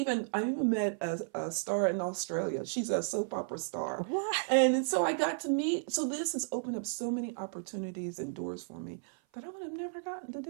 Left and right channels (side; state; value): left; silent; 55 dB below the other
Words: met a star in Australia. She's a soap opera star. And so I got to meet, so this has opened up so many opportunities and doors for me that I would have never gotten to